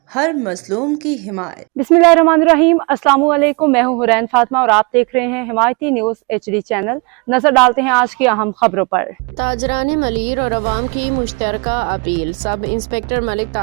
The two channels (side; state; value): left; quieter; 31.2 dB